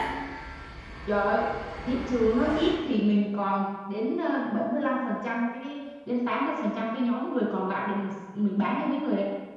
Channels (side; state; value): both; identical; correlation 1.00